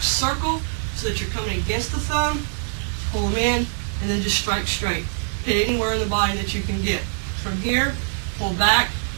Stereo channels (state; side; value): silent; left; digital silence